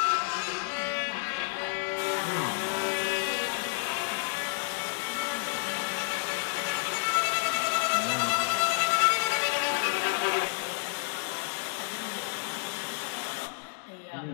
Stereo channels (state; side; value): silent; right; digital silence